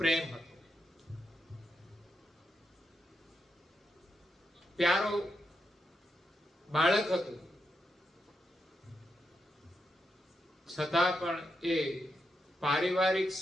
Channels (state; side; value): normal; both; correlation 0.84